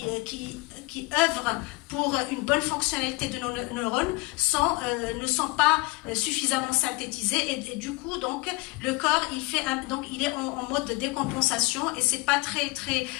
œuvrent pour une bonne fonctionnalité de nos neurones ne sont pas suffisamment synthétisés, et du coup donc le corps il est en mode de décompensation, et c'est pas très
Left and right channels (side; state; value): right; quieter; 24.8 dB